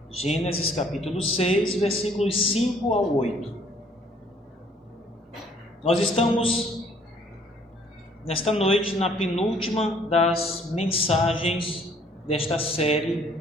Gênesis capítulo 6, versículos 5 ao 8. Nós estamos, nesta noite, na penúltima das mensagens desta série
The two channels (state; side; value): normal; both; correlation 0.61